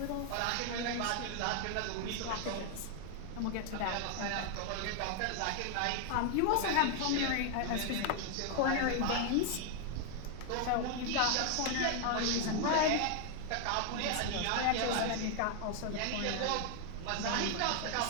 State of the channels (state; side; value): different; both; correlation 0.00